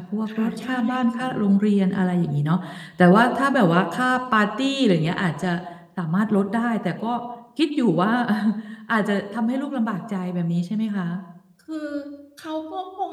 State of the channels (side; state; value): both; identical; correlation 1.00